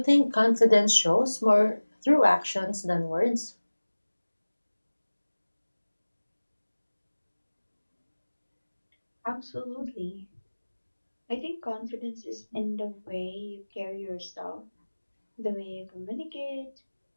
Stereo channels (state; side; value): inverted; both; correlation -1.00